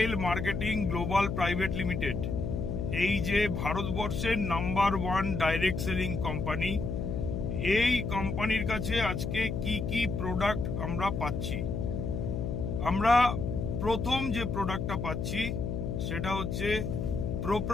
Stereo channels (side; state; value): left; noise; hum, 3 dB below the sound